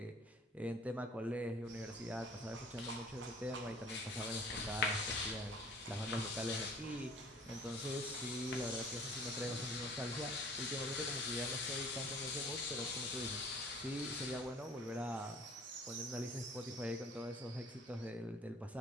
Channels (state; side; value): normal; both; correlation 0.51